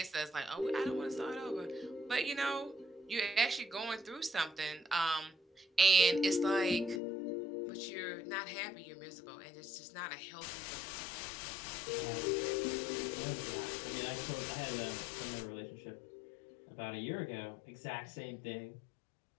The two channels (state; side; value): drops out; right; at 7.0 s